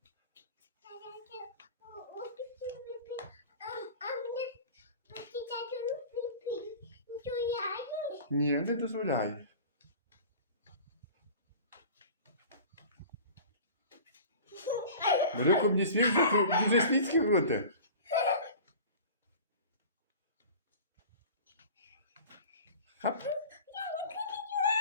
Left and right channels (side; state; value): both; inverted; correlation -0.39